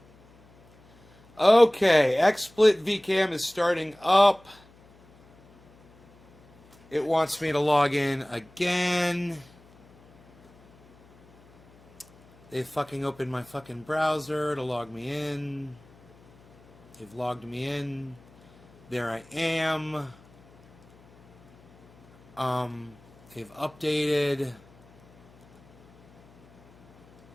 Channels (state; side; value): noise; left; hum, 28 dB below the sound